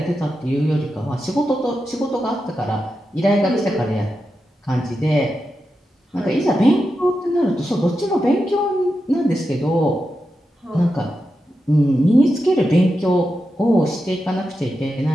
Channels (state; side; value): normal; both; correlation 0.89